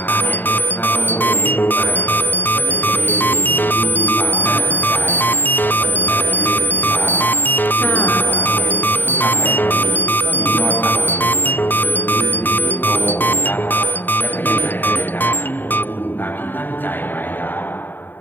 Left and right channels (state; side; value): late; right; 0.092 ms